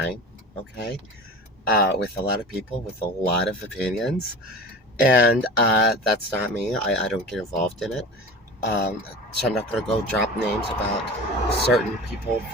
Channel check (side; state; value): both; normal; correlation 0.35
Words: Okay, with a lot of people with a lot of opinions, and that's not me. I don't get involved in it. So I'm not going to go drop names about certain people